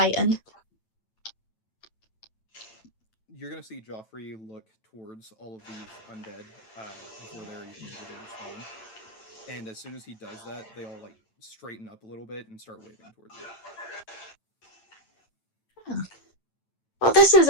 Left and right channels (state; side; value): late; right; 9.1 ms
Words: You're gonna see Joffrey look towards all of these undead before they're even able to respond. And as soon as he does that, they all like straighten up a little bit and start waving towards you. Oh. Well, this